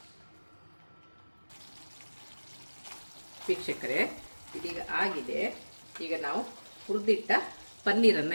ವೀಕ್ಷಕರೇ, ಇದೀಗ ಆಗಿದೆ. ಈಗ ನಾವು ಹುರಿದಿಟ್ಟ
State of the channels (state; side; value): inverted; both; correlation -1.00